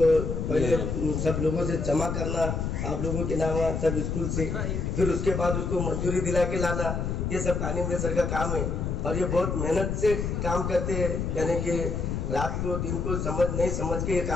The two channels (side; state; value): left; noise; rumble, 2 dB below the sound